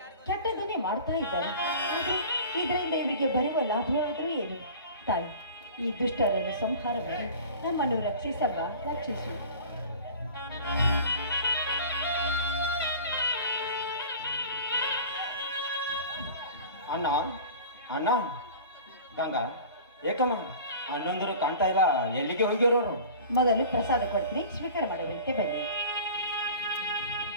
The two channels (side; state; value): both; inverted; correlation -0.41